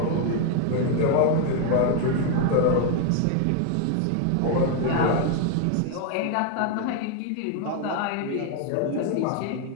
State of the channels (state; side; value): different; both; correlation 0.01